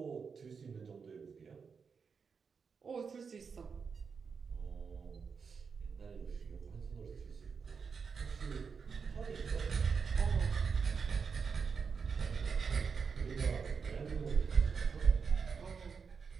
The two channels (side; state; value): left; quieter; 5.7 dB